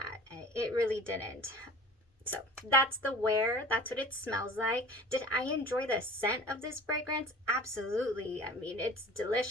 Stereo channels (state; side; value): normal; both; correlation 0.42